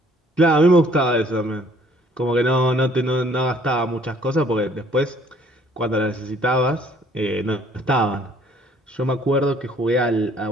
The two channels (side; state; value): both; normal; correlation 0.60